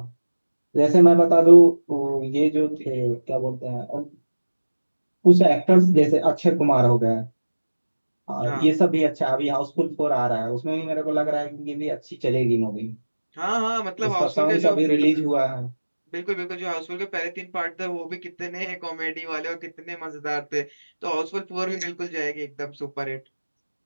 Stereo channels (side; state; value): both; inverted; correlation -1.00